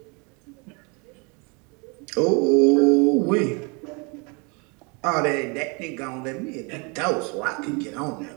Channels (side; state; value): left; quieter; 31.8 dB